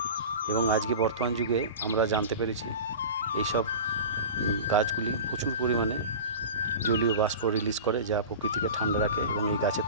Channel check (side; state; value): both; inverted; correlation -0.32